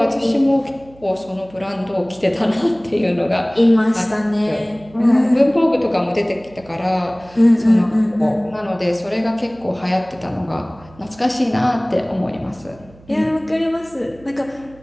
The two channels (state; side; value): noise; right; hum, 24 dB below the sound